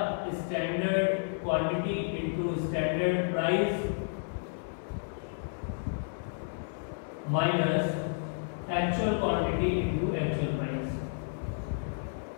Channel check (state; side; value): silent; right; digital silence